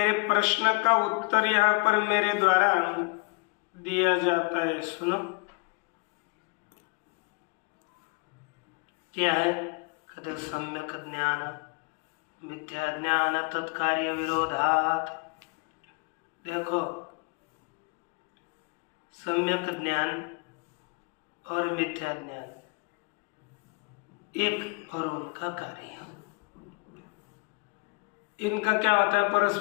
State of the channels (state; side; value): quieter; right; 30.8 dB